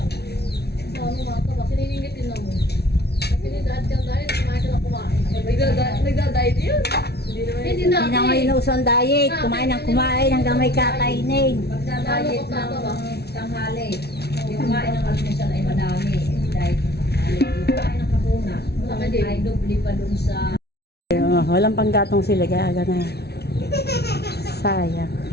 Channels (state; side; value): late; right; 0.48 ms